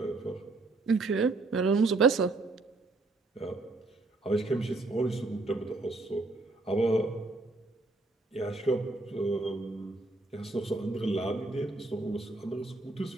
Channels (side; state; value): left; quieter; 3.2 dB